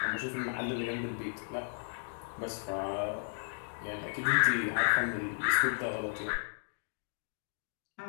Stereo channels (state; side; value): silent; right; 55 dB below the other